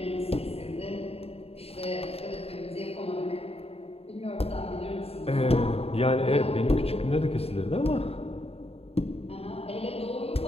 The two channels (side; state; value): right; late; 0.29 ms